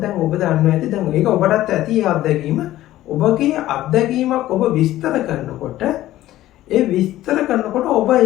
ඔබ දන්නවා ඇති දැන් ඒක ඔබටත් ඇති අත්දැකීම. ඔබගේ අත්දැකීමක් ඔබ විස්තර කරනකොට ඔබ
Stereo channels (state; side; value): quieter; right; 14.7 dB